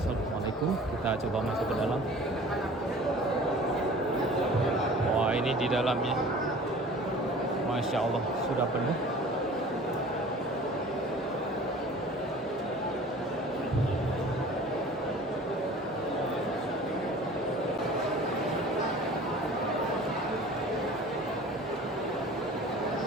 kita coba masuk ke dalam. Wah, ini di dalamnya, Masya Allah, sudah penuh.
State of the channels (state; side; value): normal; both; correlation 0.44